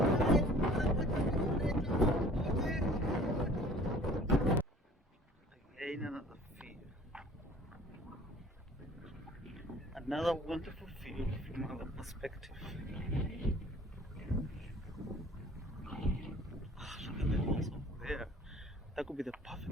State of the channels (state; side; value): normal; both; correlation 0.50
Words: Again, another field. Another wonderful field from another perspective. Look at the hills over there. That could be the